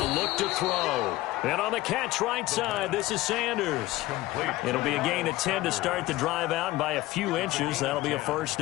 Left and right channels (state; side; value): quieter; right; 17.7 dB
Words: look to throw. And on the catch right side, this is Sanders. It'll be a gain of 10 to start the drive out, and by a few inches, that'll be a first